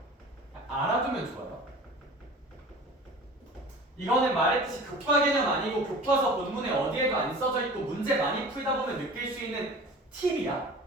알아두면 좋아요. 이거는 말했듯이 교과 개념 아니고 교과서 본문에 어디에도 안 써져 있고 문제 많이 풀다 보면 느낄 수 있는 팁이야.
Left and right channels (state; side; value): normal; both; correlation 0.40